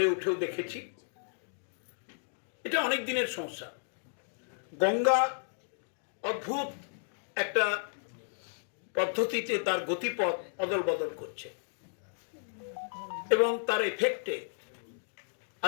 উঠেও দেখেছি। এটা অনেক দিনের সমস্যা। গঙ্গা অদ্ভুত একটা পদ্ধতিতে তার গতিপথ অদল বদল করছে এবং তার এফেক্টে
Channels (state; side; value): silent; right; digital silence